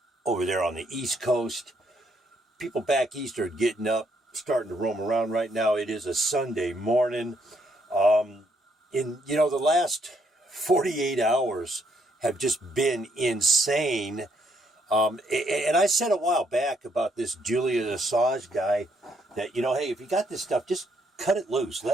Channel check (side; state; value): both; normal; correlation 0.72